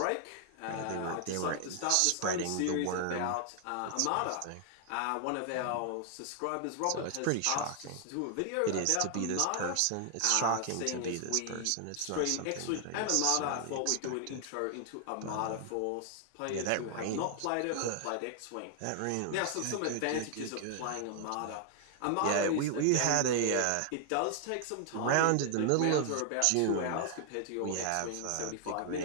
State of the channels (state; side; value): different; both; correlation 0.00